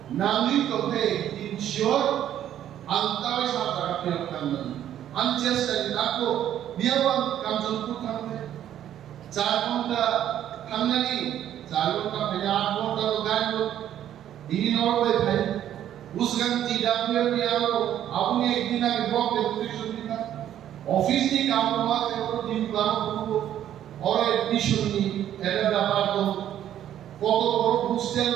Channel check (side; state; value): left; quieter; 11.1 dB